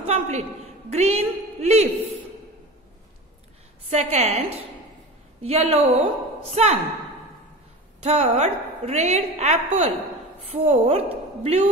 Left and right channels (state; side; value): normal; both; correlation 0.32